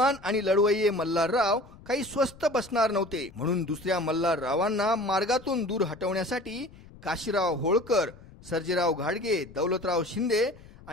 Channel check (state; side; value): noise; left; rumble, 21 dB below the sound